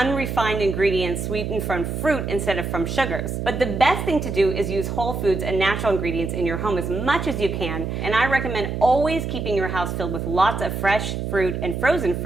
ingredients sweetened from fruit instead of from sugars. But the best thing to do is use whole foods and natural ingredients in your home as much as you can. And I recommend always keeping your house filled with lots of fresh fruit and frozen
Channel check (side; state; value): right; noise; hum, 3 dB below the sound